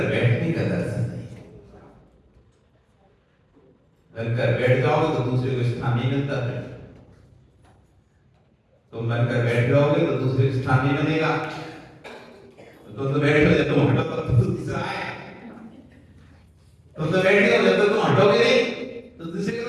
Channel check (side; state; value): both; identical; correlation 1.00